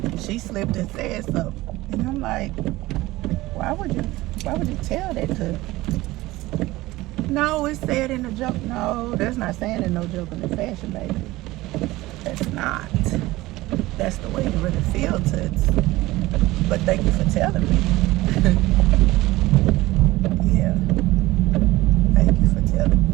she slipped and said something. And I'm like, why would you tell that to? No, it's said in a joke. No, that's not saying in no joke in the fashion, baby. That's not. That's the way you really feel to it. But thank you for telling me. Yeah. Thank you for telling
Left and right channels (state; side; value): quieter; left; 18.6 dB